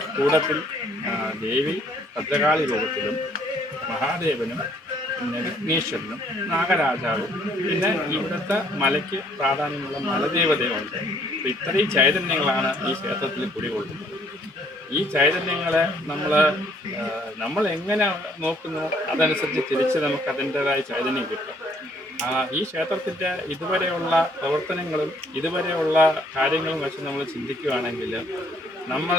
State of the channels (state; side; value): normal; both; correlation 0.64